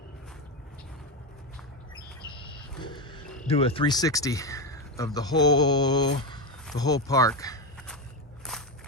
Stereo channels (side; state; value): both; normal; correlation 0.12